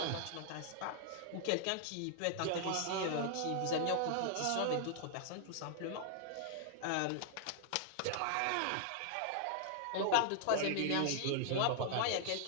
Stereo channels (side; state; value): both; different; correlation 0.00